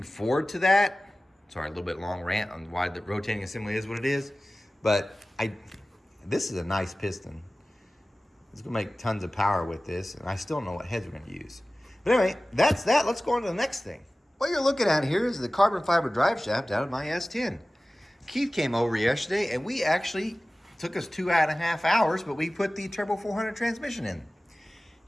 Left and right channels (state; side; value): normal; both; correlation 0.97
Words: forward to that. Sorry, a little bit long rant on why the rotating assembly is what it is. But this is a nice piston. It's going to make tons of power with this, and I still don't know what heads we're going to use. But anyway, that's that. Let's go on to the next thing. What you're looking at here is the carbon fiber drive shaft out of my S10. Keith came over yesterday, and we actually took us 2.5 hours, but we put the Turbo 400 transmission in.